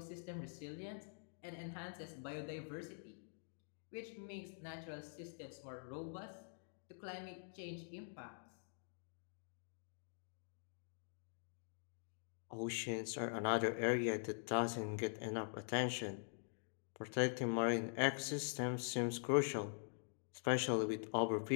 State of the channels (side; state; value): right; silent; digital silence